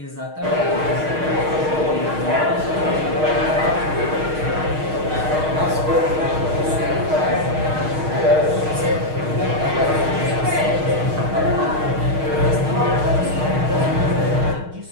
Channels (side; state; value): left; late; 6.4 ms